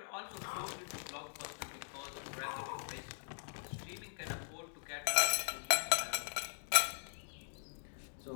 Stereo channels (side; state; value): right; silent; digital silence